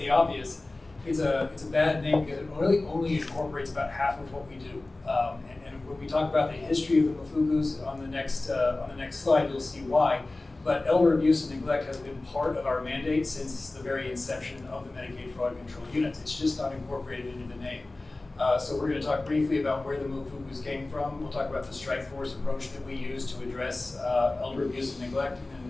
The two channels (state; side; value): quieter; right; 3.0 dB